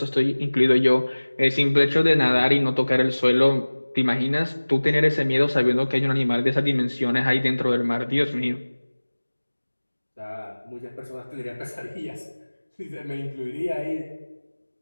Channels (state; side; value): inverted; both; correlation -1.00